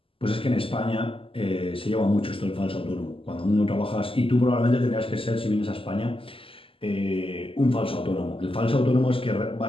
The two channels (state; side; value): late; right; 0.26 ms